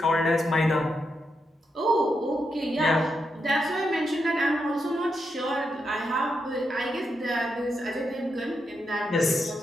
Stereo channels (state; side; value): normal; both; correlation 0.83